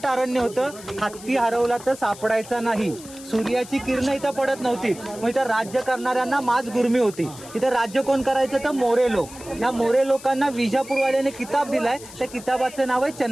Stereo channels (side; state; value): left; noise; hiss, 17 dB below the sound